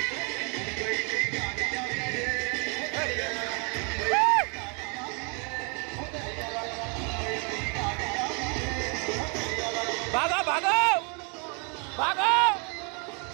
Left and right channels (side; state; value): left; quieter; 34.8 dB